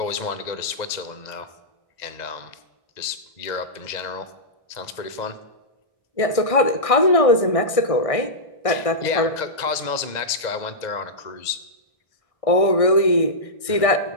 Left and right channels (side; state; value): right; late; 1.6 ms